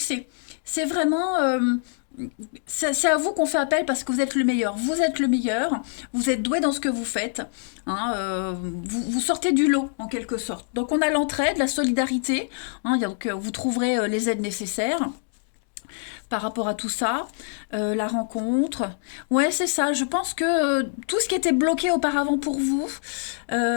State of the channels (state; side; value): silent; right; digital silence